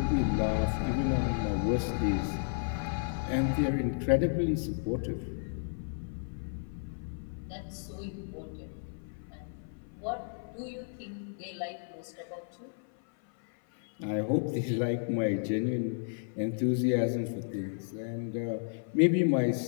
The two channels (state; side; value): silent; right; 55 dB below the other